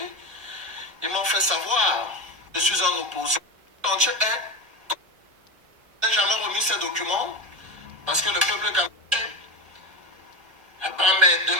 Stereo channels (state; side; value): late; left; 1.3 ms